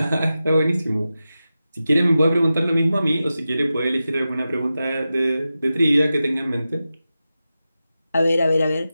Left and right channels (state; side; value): inverted; both; correlation -0.93